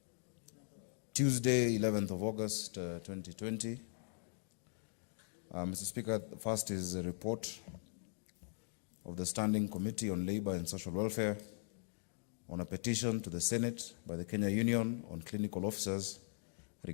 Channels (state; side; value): silent; right; digital silence